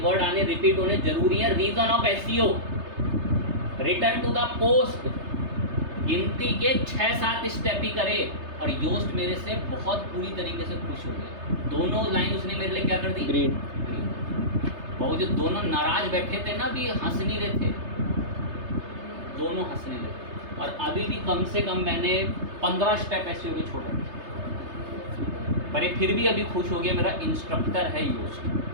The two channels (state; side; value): late; left; 3.3 ms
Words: वर्ड आने रिपीट होने जरूरी है। Reason of SEO, return to the post, गिनती के 6-7 स्टेप ही करे। और योस्ट मेरे से बहुत पूरी तरीके से खुश हो गए। दोनों लाइन उसने मेरे लिए क्या कर दी? ग्रीन। वो जो दोनों नाराज बैठे थे ना, अभी हंस नहीं रहे थे, दोनों हंसने लगे। और अभी भी कम से कम मैंने 15 स्टेप ऐसे हो गए छोटे, पर ये फिर भी अभी खुश हो गया। मेरा इंस्ट्रक्टर है योस्ट।